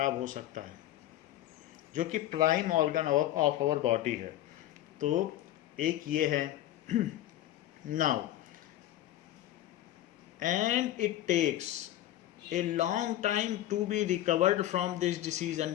हो सकता है, जो कि prime organ of our body है. तो एक ये है. Now and it takes a long time to be recovered from this disease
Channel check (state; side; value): quieter; right; 13.5 dB